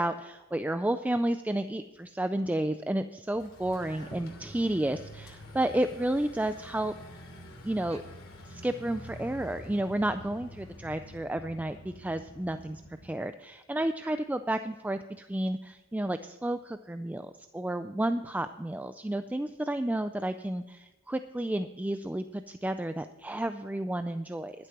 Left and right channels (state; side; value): normal; both; correlation 0.90